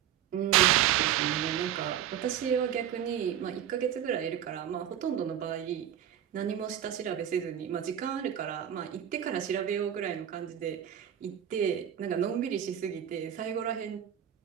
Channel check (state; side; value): quieter; left; 10.0 dB